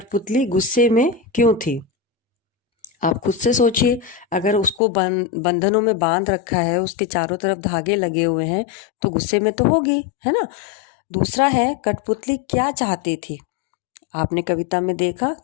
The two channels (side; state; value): right; drops out; at 4.8 s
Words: गुस्से में क्यों थी। आप खुद से सोचिए, अगर उसको बंधनों में बांध रखा है, उसके चारों तरफ धागे लगे हुए हैं, तो गुस्से में तो होगी, है ना। दूसरा है, कठपुतली क्या चाहती थी। आपने कविता में देखा